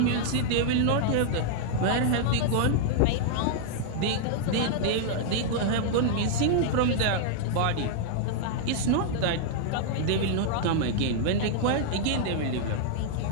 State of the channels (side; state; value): both; different; correlation -0.01